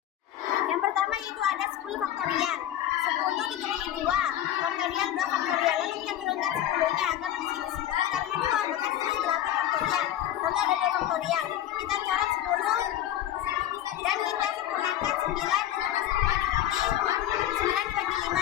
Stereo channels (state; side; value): quieter; right; 12.2 dB